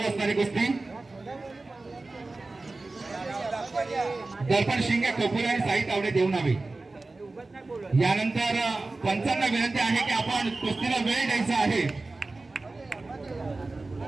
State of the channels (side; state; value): left; quieter; 3.3 dB